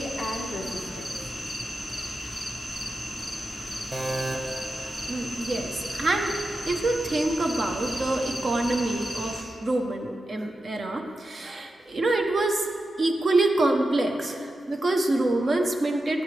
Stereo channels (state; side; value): normal; both; correlation 0.90